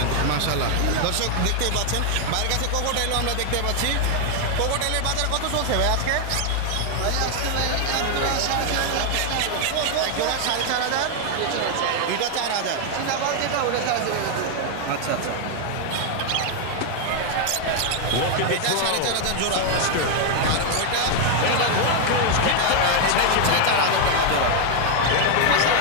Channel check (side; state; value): both; different; correlation 0.00